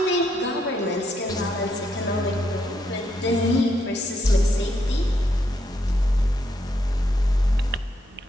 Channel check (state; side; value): normal; both; correlation 0.77